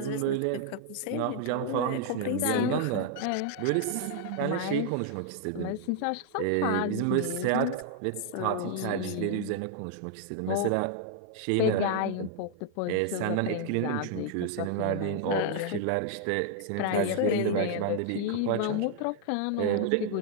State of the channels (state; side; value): different; both; correlation 0.00